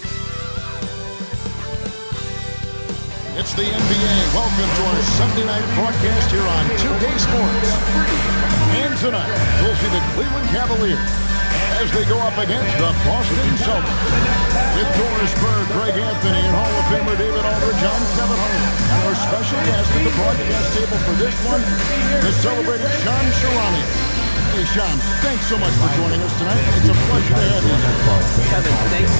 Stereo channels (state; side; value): inverted; both; correlation -1.00